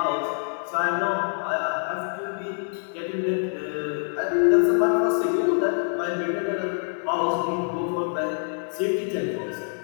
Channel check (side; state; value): right; silent; 61 dB below the other